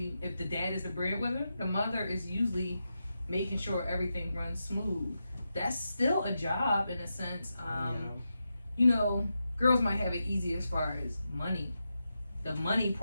if the dad is the breadwinner, the mother is usually making sure everything runs smooth. that's still a job in a sense. You know, girls might have it easy as far as money, the money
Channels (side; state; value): both; inverted; correlation -0.88